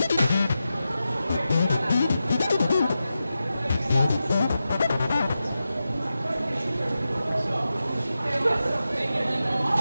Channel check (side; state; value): both; inverted; correlation -0.91